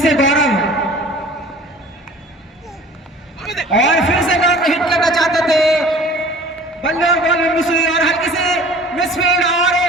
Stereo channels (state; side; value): normal; both; correlation 0.46